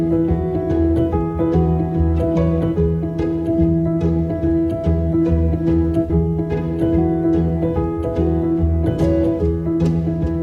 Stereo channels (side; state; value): both; identical; correlation 1.00